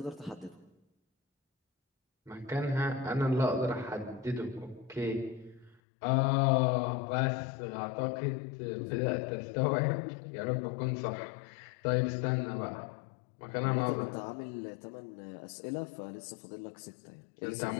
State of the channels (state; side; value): drops out; right; at 5.8 s